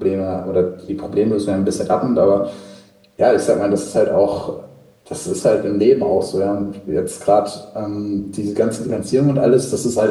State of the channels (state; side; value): identical; both; correlation 1.00